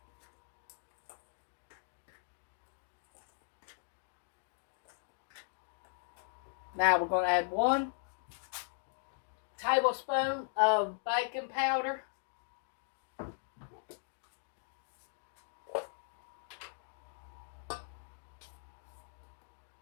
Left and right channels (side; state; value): right; silent; digital silence